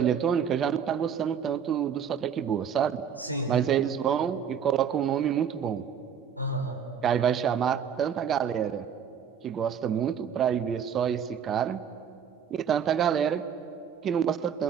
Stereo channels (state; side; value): quieter; left; 7.9 dB